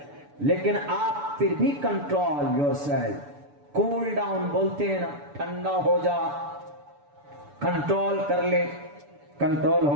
لیکن آپ پھر بھی control yourself, cool down بولتے ہیں نا, ٹھنڈا ہو جا, کنٹرول کر لے, کنٹرول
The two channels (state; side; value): late; left; 6.9 ms